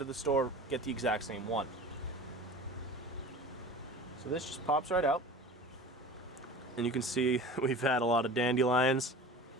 the store, get the exact same one. So this just pops right out. And you can see we've had a lot of dandelions.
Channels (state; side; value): normal; both; correlation 0.38